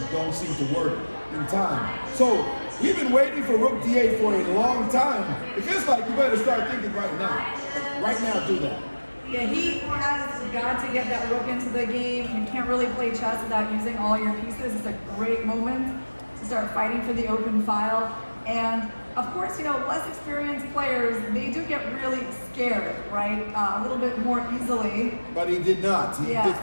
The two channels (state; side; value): inverted; both; correlation -1.00